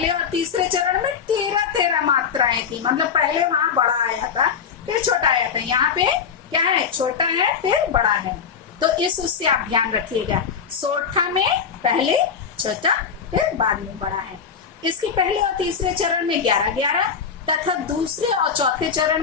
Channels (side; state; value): right; quieter; 6.7 dB